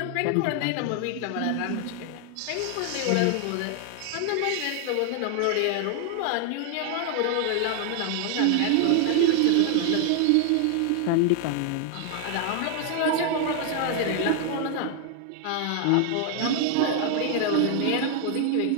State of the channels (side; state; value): both; different; correlation 0.00